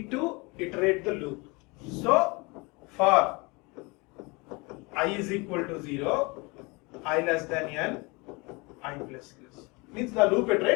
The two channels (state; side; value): quieter; right; 26.8 dB